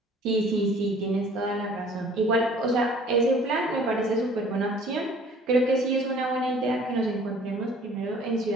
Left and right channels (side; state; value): both; normal; correlation 0.52